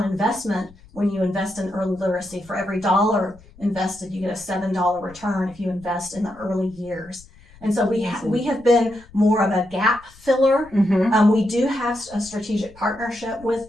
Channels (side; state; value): left; noise; rumble, 24 dB below the sound